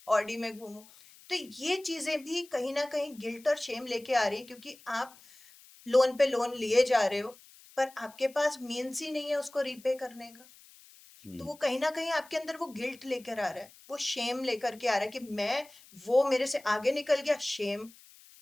ऑडी में घूमूं। तो ये चीजें भी कहीं ना कहीं गिल्ट और शेम लेके आ रही है, क्योंकि आप लोन पे लोन लिए जा रहे हो, पर आपके पास मीन्स ही नहीं है उसको रीपे करने का। तो वो कहीं ना कहीं आपके अंदर वो गिल्ट लेकर आ रहा है, वो शेम लेकर के आ रहा है कि मैं, वो मेरे से आगे निकल गया, शेम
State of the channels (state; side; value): noise; left; hiss, 23 dB below the sound